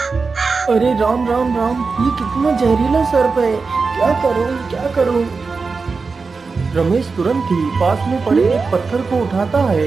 अरे राम राम राम, ये कितना जहरीला सर्प है, क्या करूं क्या करूं? रमेश तुरंत ही पास में पड़े एक पत्थर को उठाता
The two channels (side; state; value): left; quieter; 4.5 dB